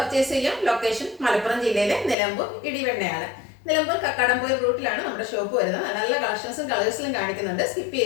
ചെയ്യാം. ലൊക്കേഷൻ മലപ്പുറം ജില്ലയിലെ നിലമ്പൂർ ഇടിവെണ്ണയാണ്. നിലമ്പൂർ കക്കാടംപോയി റൂട്ടിലാണ് നമ്മുടെ ഷോപ്പ് വരുന്നത്. നല്ല കളക്ഷൻസും കളേഴ്സിലും കാണിക്കുന്നുണ്ട്. സ്കിപ്പ്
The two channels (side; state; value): right; drops out; at 2.1 s